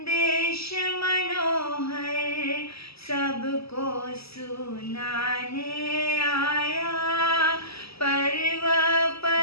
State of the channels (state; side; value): late; right; 0.77 ms